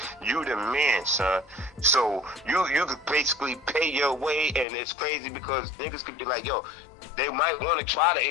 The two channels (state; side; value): drops out; right; at 4.7 s